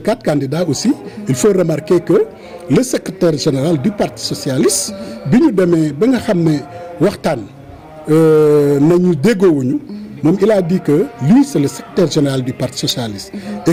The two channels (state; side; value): identical; both; correlation 1.00